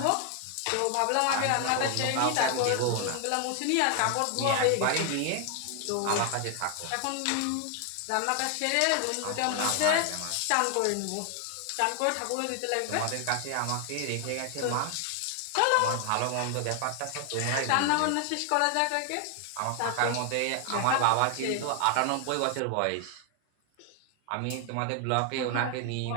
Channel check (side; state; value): both; different; correlation 0.00